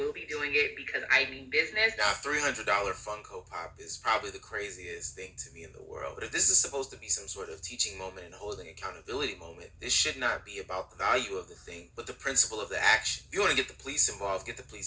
be doing it because I mean business. Now, $300 Funko Pop is probably the craziest thing to me in the world. But if this is supposed to be some sort of teaching moment and holding accountability moment, this should not be about the value of the thing, but the principle of the action. If you want to get the police involved, get the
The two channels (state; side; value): identical; both; correlation 1.00